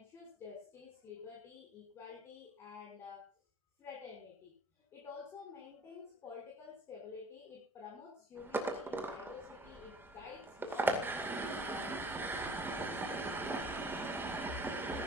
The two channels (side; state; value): both; normal; correlation 0.48